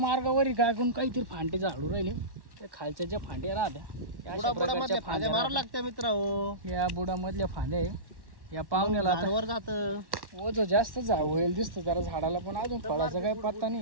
काय कोण काहीतरी फांटे झाडू राहिले. ते खालच्या ज्या फांद्या राहत्या बुडामधल्या फांद्या मारायला लागत्या मित्र हो. या बुडामधल्या फांद्या आहे. या पाहुण्याला वर जात ओझ जास्त होईल दिसतं जरा झाडाला, पण अजून फळाचा काही पत्ता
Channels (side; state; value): left; late; 1.1 ms